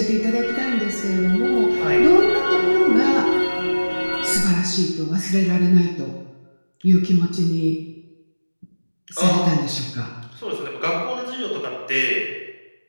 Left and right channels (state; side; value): inverted; both; correlation -1.00